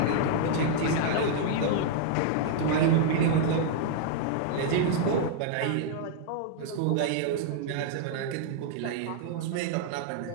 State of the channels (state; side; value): different; both; correlation -0.01